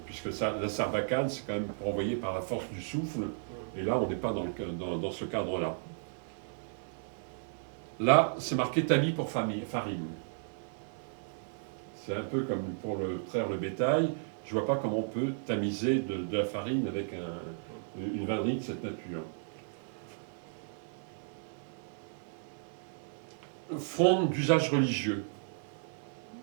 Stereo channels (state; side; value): silent; left; digital silence